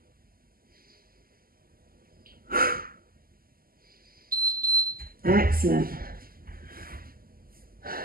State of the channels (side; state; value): left; late; 0.42 ms